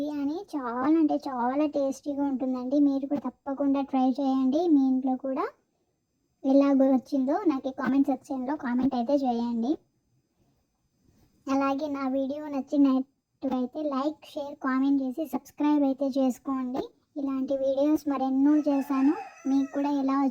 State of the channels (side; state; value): both; identical; correlation 1.00